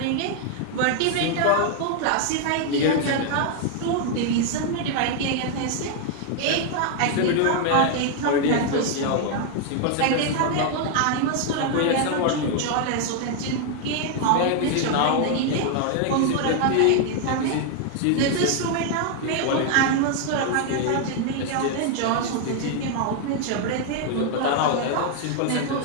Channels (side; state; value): both; different; correlation 0.00